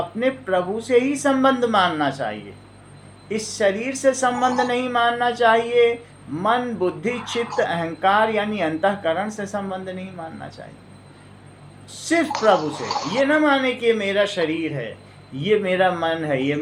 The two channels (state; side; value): identical; both; correlation 1.00